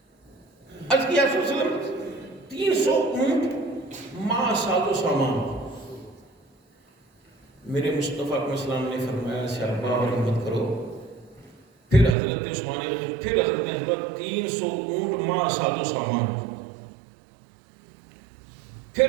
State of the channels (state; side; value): drops out; left; at 12.2 s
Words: عرض کیا صلی اللہ علیہ وسلم 300 اونٹ ماں ساز و سامان. میرے مصطفیٰ علیہ السلام نے فرمایا صحابہ اور ہمت کرو. پھر حضرت عثمان پھر حضرت نے 300 اونٹ ماں ساز و سامان. پھر